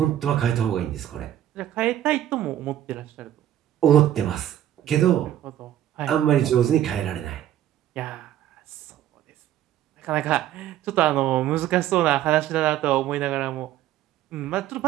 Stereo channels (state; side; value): quieter; left; 12.0 dB